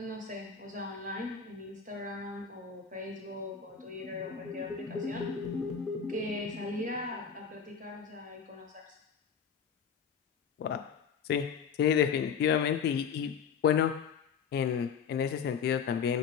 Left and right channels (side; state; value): right; quieter; 6.8 dB